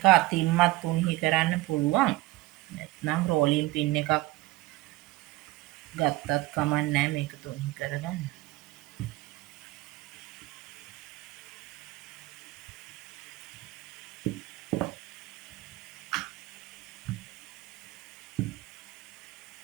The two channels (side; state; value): left; quieter; 18.6 dB